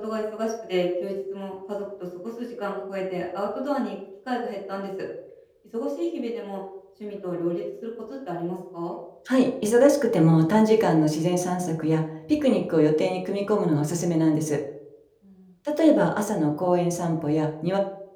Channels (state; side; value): identical; both; correlation 1.00